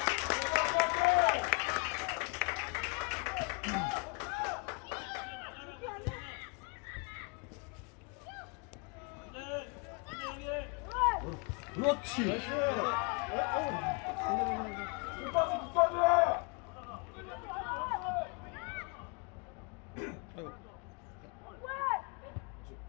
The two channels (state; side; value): quieter; right; 32.0 dB